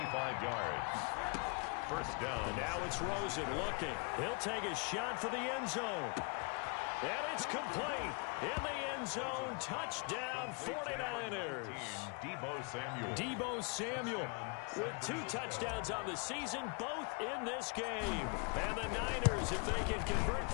yards. First down. And now it's Rosen looking. He'll take a shot for the end zone. And it's complete. In the end zone, touchdown 49ers. Deebo Samuel. Deebo Samuel with 2 touchdowns on the season, both in this game. And the Niners, if they can convert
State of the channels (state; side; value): quieter; right; 34.4 dB